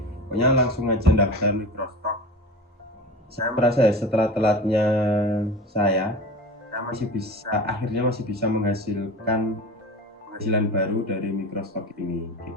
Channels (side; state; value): both; normal; correlation 0.33